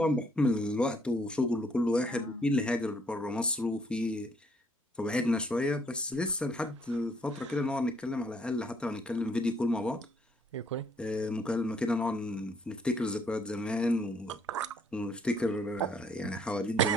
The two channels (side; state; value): both; normal; correlation 0.66